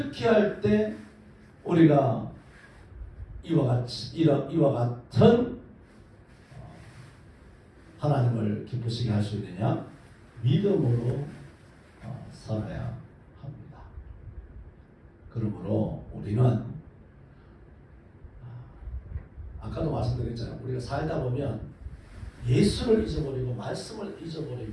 할 때 우리가 이와 같은 하나님을 기쁘시게 할 수 있느냐? 믿음으로 살아야 합니다. 그러므로 우리는 아까도 말씀드렸잖아요. 우리가 살다 보면 예수를 잊어버리고 말씀을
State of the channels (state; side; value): identical; both; correlation 1.00